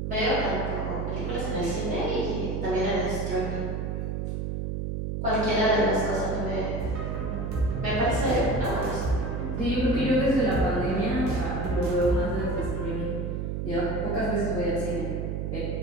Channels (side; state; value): right; noise; hum, 2 dB below the sound